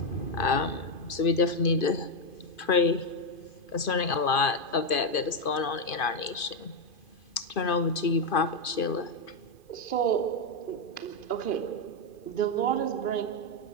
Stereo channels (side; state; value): right; late; 2.5 ms